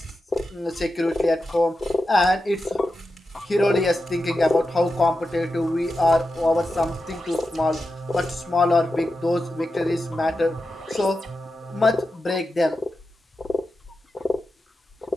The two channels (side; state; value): both; normal; correlation 0.90